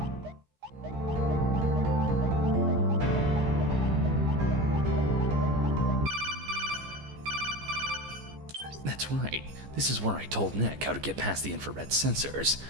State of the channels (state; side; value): late; left; 14 ms